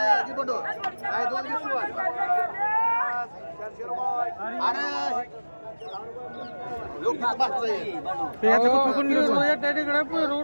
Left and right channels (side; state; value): both; inverted; correlation -1.00